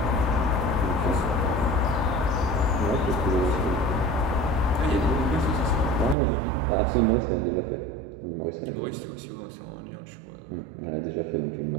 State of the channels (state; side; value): drops out; left; at 6.2 s